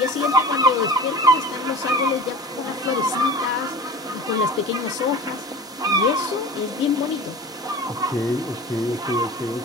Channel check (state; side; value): normal; both; correlation 0.37